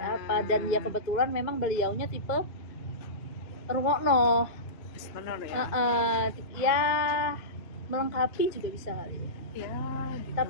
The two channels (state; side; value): late; right; 2.1 ms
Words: apa, dan ya kebetulan memang beliaunya tipe rungokno ya. Ya melengkapi juga bisa kali ya. Ya gitu.